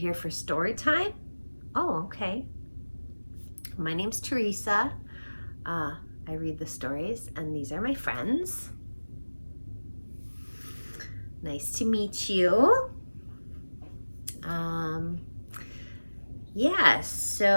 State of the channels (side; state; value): both; inverted; correlation -1.00